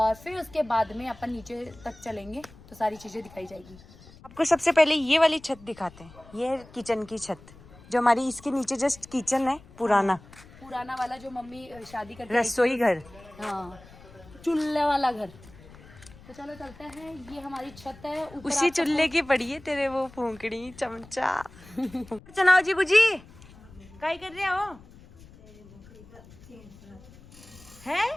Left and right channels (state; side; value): noise; left; rumble, 22 dB below the sound